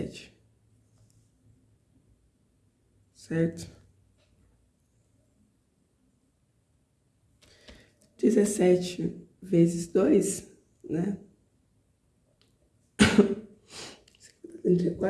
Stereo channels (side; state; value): both; identical; correlation 1.00